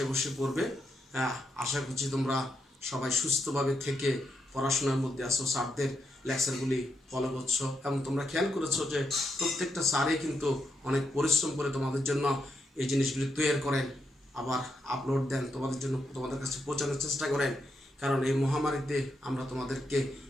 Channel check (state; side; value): normal; both; correlation 0.82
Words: বসে পড়বে। আশা করছি তোমরা সবাই সুস্থভাবে থেকে পড়াশোনার মধ্যে আছো, স্যারদের লেকচারগুলি ফলো করছো, এবং তোমরা খেয়াল করেছো যে প্রত্যেকটা স্যারই কিন্তু অনেক পরিশ্রম করে তোমাদের জন্য এই জিনিসগুলি তৈরি করেন, আবার আপলোড দেন তোমাদের জন্য, তোমাদের কাছে পৌঁছানোর চেষ্টা করেন। কারণ এই মহামারীতে আমরা তোমাদেরকে